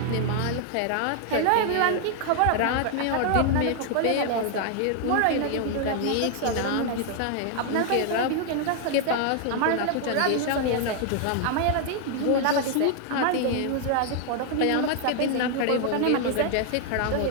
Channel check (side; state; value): both; different; correlation 0.00